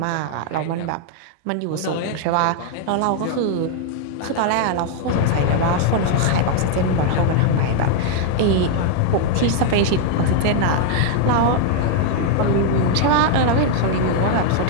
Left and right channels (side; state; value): both; different; correlation 0.00